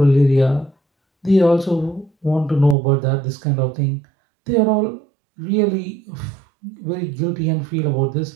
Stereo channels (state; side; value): drops out; left; at 2.8 s